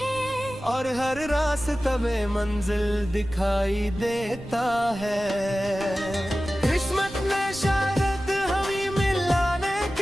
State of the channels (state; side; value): noise; right; rumble, 16 dB below the sound